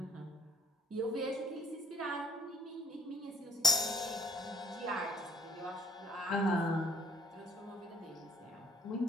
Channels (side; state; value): both; normal; correlation 0.55